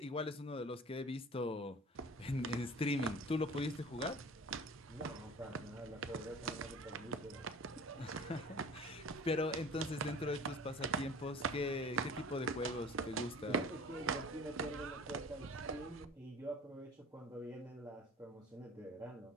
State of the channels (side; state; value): both; normal; correlation 0.43